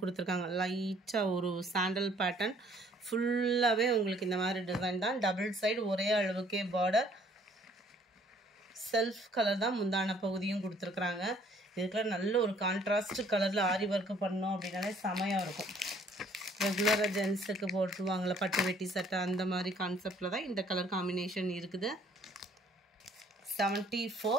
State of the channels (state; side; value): normal; both; correlation 0.60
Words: கொடுத்துருக்காங்க. லைட்டாக ஒரு சாண்டல் பேட்டர்ன் ஃபுல்லாகவே உங்களுக்கு இந்த மாதிரி டிசைன் தான். டபுள் சைடு ஒரே அளவுக்கே பார்டர். செல்ஃப் கலர் தான் முந்தான பகுதியும் கொடுத்துருக்குறாங்க. இதுக்கெல்லாம் நல்ல ஒரு கான்ட்ராஸ்ட் கலரில் ஆரி ஒர்க்கு பண்ணோம் அப்படின்னாலே செமையாக இருக்கும். ரெகுலராக ஜென்ஸுக்கு போட்டுருவாங்களே பட்டு வெட்டி சட்டை, அந்த மாதிரி கான்செப்டில் தான் இந்த கலர் காம்பினேஷன் இருக்குது. 74.